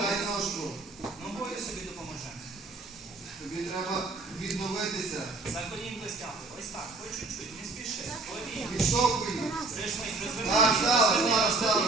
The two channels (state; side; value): quieter; left; 3.4 dB